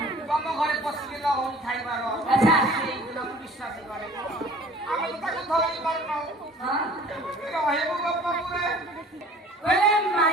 ତମ ଘରେ ପଶିକି ଲହରୀ ଖାଇବାର ସେଇଦିନ ମୁଁ ବିଶ୍ୱାସ କରେ। ଆମେ ତ ତାକୁ ଧରି ପାରୁନାହୁଁ ରହିବୁ ଗୋପପୁରେ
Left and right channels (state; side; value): normal; both; correlation 0.48